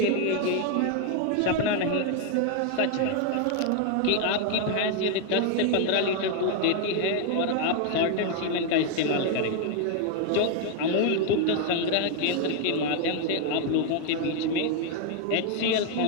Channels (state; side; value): different; both; correlation 0.00